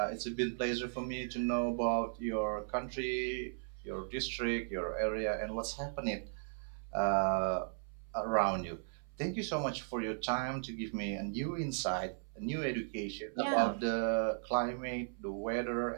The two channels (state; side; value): silent; left; 53 dB below the other